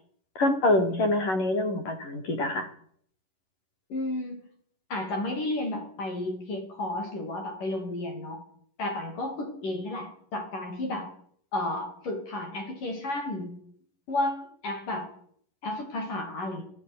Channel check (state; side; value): late; right; 11 ms